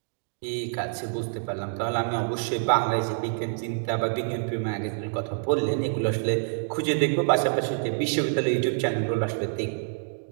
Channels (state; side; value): silent; left; digital silence